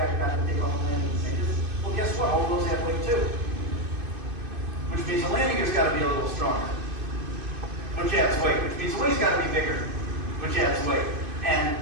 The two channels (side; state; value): left; late; 2.5 ms